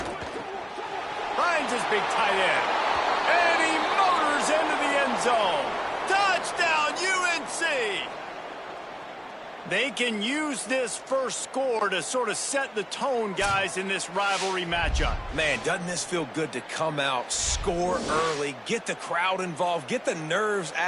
Finds his big tight end. And he motors into the end zone. Touchdown, UNC! They can use this first score to sort of set the tone, guys, in this rivalry matchup. Man, doesn't this feel good to come out, score early, get the crowd involved, get the nerves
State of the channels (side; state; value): both; identical; correlation 1.00